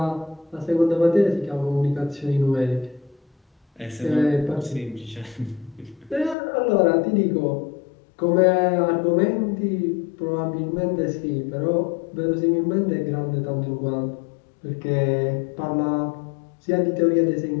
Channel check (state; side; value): drops out; right; at 6.4 s